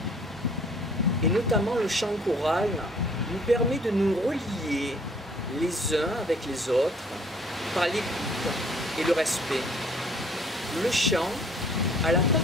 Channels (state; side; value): normal; both; correlation 0.58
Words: et notamment le chant choral, nous permet de nous relier les uns avec les autres par l'écoute et le respect. Le chant a la